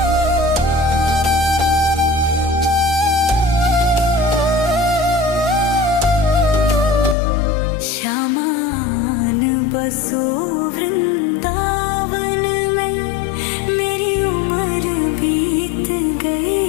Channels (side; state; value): right; drops out; at 7.2 s